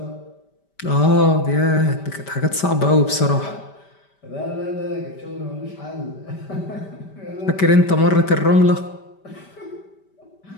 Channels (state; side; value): late; right; 5.1 ms